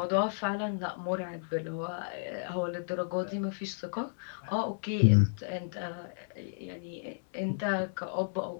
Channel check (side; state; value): right; silent; 56 dB below the other